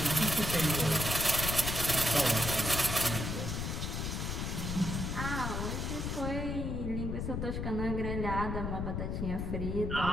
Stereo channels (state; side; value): noise; left; rumble, 2 dB below the sound